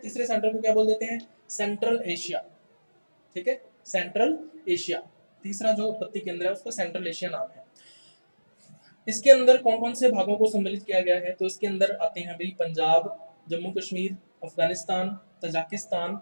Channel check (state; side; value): inverted; both; correlation -1.00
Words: सेंटर को क्या बोल देते हैं, सेंट्रल एशिया। ठीक है, सेंट्रल एशिया, तीसरा जो उत्पत्ति केंद्र है उसका सेंट्रल एशिया नाम है। इसके अंदर कौन कौन से भागों को सम्मिलित किया गया है, तो इसके अंदर आते हैं भाई पंजाब, जम्मू कश्मीर, अफगानिस्तान, तजाकिस्तान